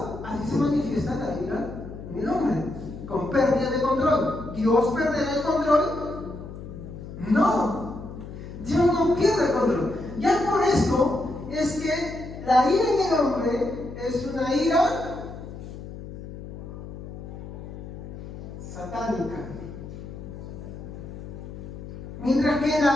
Así se manifiesta la ira en el hombre. Con pérdida de control. ¿Dios perderá el control? No. Dios no pierde el control. Ya por esto es que la ira en el hombre es una ira satánica. Mientras que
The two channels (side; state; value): left; noise; hum, 11 dB below the sound